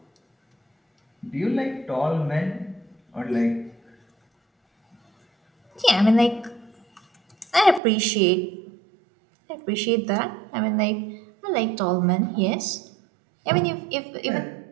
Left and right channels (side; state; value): left; drops out; at 7.8 s